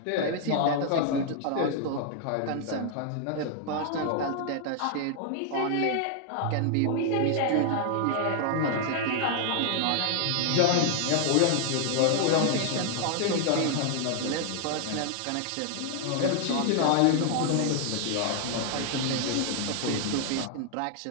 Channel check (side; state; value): both; different; correlation 0.00